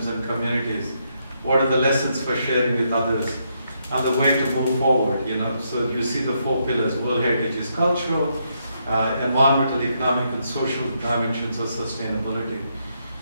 and communities? What are the lessons for sharing with others? And the way to move forward, So you see the 4 pillars. World Heritage is cultural, environmental, economic, and social dimensions of sustainability.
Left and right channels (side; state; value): both; inverted; correlation -0.77